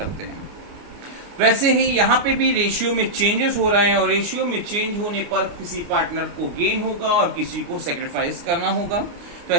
हैं। वैसे ही यहाँ पे भी रेशियो में चेंजेस हो रहे हैं और रेशियो में चेंज होने पर किसी पार्टनर को गेन होगा और किसी को सेक्रीफाइस करना होगा। तो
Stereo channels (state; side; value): late; left; 29 ms